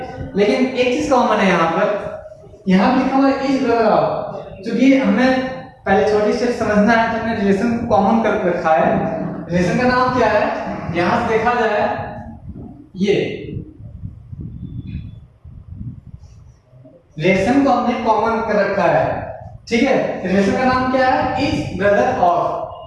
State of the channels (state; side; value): identical; both; correlation 1.00